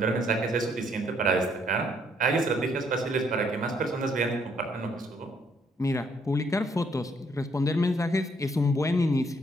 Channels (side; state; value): both; normal; correlation 0.69